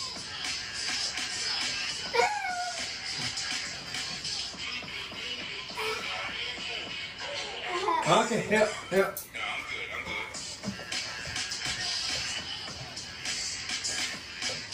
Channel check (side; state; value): both; identical; correlation 1.00